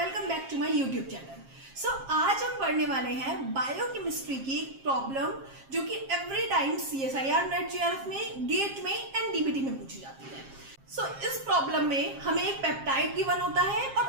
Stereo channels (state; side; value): late; left; 7.5 ms